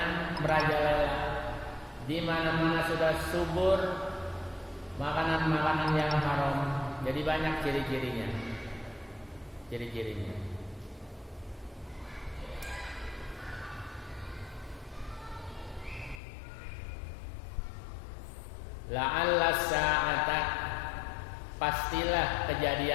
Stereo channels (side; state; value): right; drops out; at 16.2 s